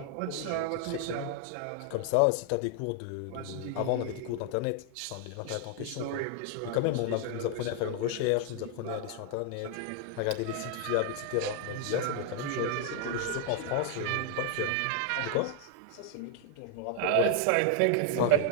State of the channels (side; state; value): both; different; correlation 0.00